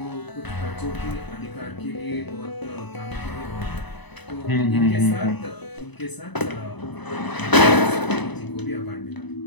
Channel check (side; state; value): right; late; 1.0 ms